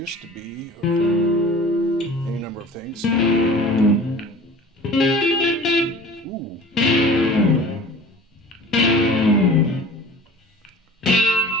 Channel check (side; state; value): both; normal; correlation 0.43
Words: to be, or any number of things. Ooh.